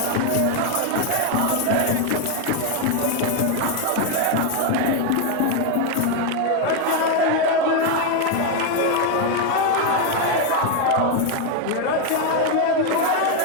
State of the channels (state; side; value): different; both; correlation 0.01